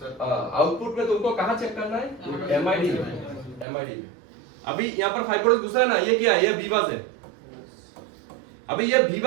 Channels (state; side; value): drops out; left; at 3.7 s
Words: आउटपुट में तुमको कहां चेक करना है, एमआईडी में। अभी यहाँ पर 5 वोल्टेज घुसा है ना, ये क्या है, ये वीवास है। अभी ये